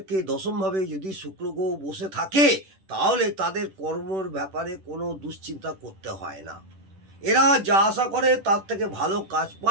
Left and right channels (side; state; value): left; late; 10 ms